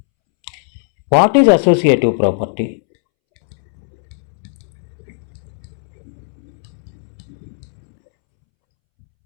What is associative property?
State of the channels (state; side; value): silent; right; 67 dB below the other